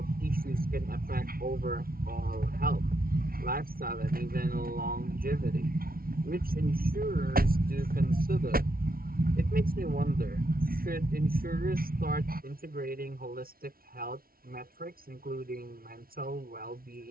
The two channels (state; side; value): late; left; 0.43 ms